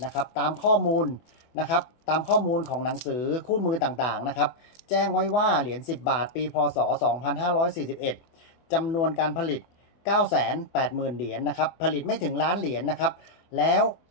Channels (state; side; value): late; right; 24 ms